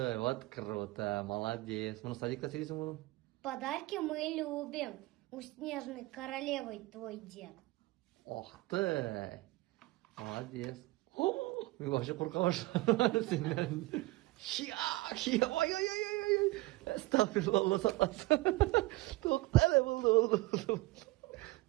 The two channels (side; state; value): left; quieter; 20.7 dB